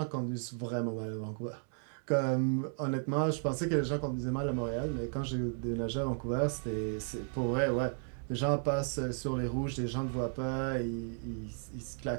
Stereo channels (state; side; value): silent; left; 55 dB below the other